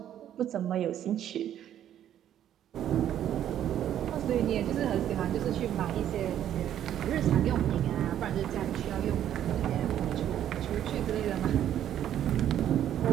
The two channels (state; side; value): quieter; left; 10.8 dB